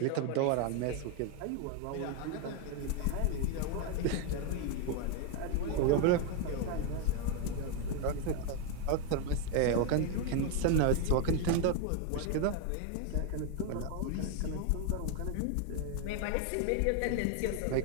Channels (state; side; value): different; both; correlation 0.01